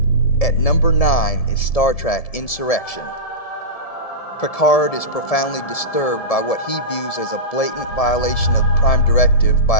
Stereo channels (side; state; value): right; late; 1.7 ms